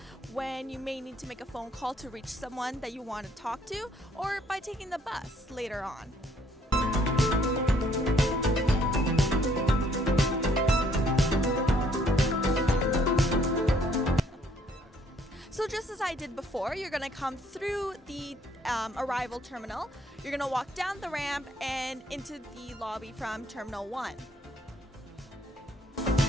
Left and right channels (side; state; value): both; normal; correlation 0.65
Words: when you may need to make a phone call to reach someone that you want to talk to, or by taking the bus later on. So just as I did before, you're going to come through the arrival terminal, you're going to walk down the ramp and into the lobby from Terminal 1.